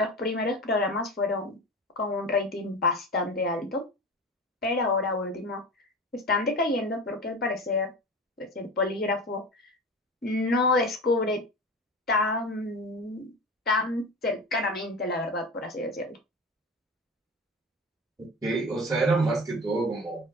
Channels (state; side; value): normal; both; correlation 0.30